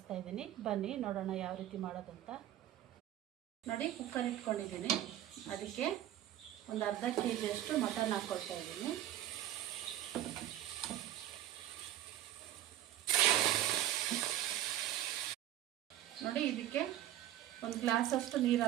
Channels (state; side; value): quieter; left; 12.9 dB